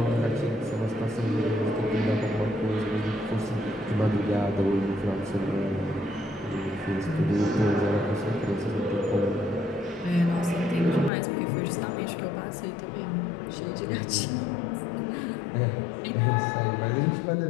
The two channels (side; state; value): right; drops out; at 11.1 s